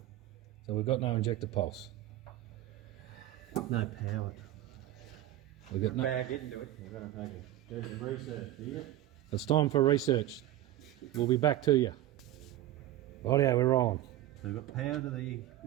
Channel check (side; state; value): left; quieter; 13.9 dB